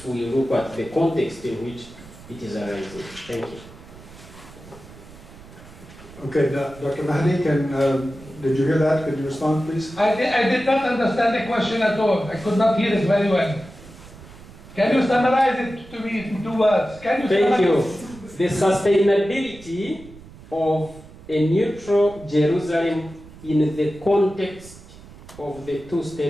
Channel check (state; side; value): noise; right; rumble, 19 dB below the sound